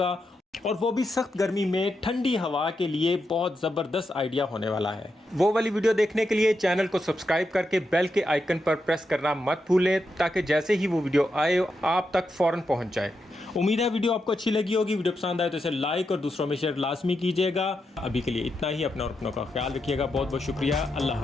और वो भी सख्त गर्मी में ठंडी हवा के लिए बहुत ज़बरदस्त आइडिया होने वाला है। वो वाली वीडियो देखने के लिए चैनल को सब्सक्राइब करके बेल के आइकन पर प्रेस करना मत भूलें, ताकि जैसे ही वो वीडियो आए आप तक फ़ौरन पहुंच जाए। उम्मीद है वीडियो आपको अच्छी लगी होगी। वीडियो पसंद आए तो इसे लाइक और दूसरों में शेयर लाजमी कीजिएगा। अभी के लिए इतना ही। अपना और अपनों का ख्याल रखिएगा। बहुत बहुत शुक्रिया। अल्लाह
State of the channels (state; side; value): normal; both; correlation 0.85